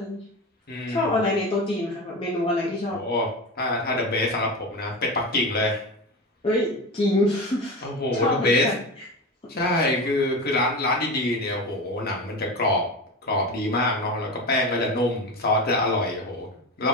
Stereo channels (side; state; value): both; normal; correlation 0.24